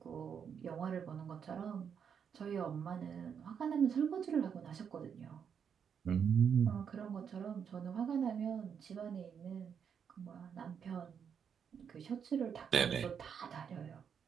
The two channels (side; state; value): left; quieter; 7.4 dB